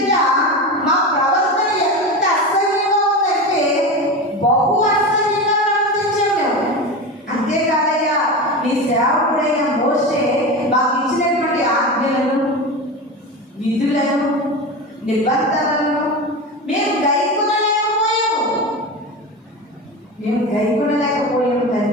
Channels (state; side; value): normal; both; correlation 0.24